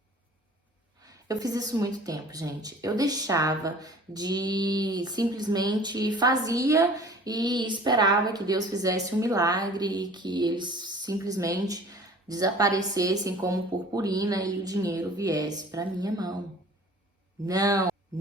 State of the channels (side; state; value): both; normal; correlation 0.47